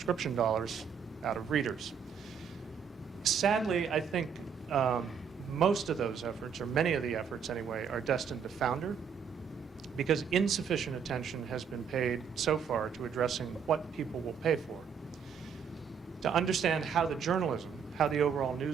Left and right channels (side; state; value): left; quieter; 7.0 dB